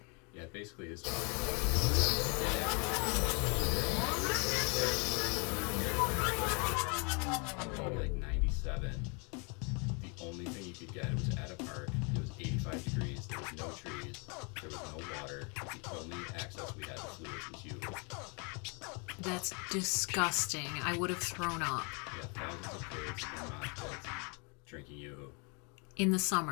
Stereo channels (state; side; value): quieter; right; 33.9 dB